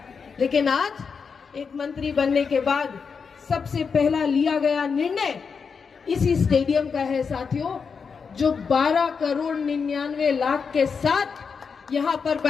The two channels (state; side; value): quieter; right; 5.7 dB